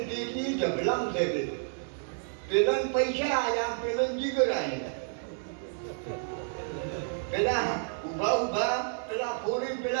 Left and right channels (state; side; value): silent; left; 58 dB below the other